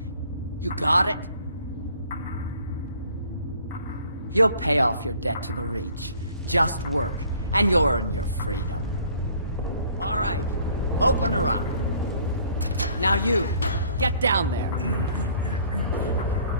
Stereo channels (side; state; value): both; inverted; correlation -0.57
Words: You got it? You'll pay off your debt to the Reach. Just work, and you'll earn your freedom. All right, open her up. Now you, get down there.